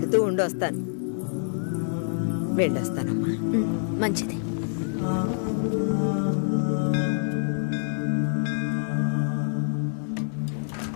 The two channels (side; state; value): right; silent; 57 dB below the other